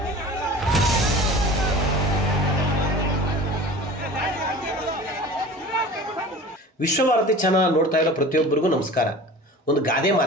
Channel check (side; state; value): both; normal; correlation 0.39